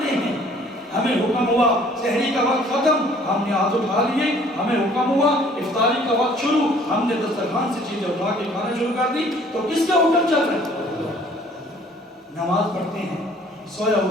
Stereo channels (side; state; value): both; normal; correlation 0.56